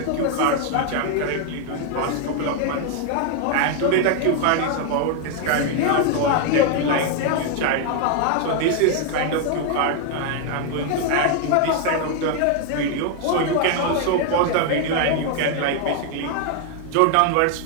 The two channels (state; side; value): different; both; correlation 0.00